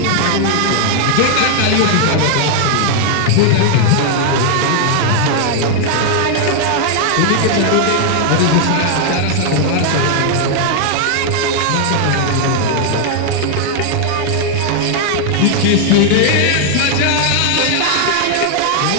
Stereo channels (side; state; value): both; different; correlation 0.00